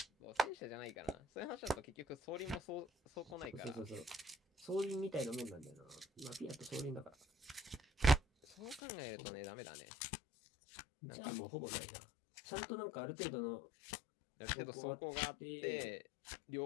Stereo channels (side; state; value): right; drops out; at 8.8 s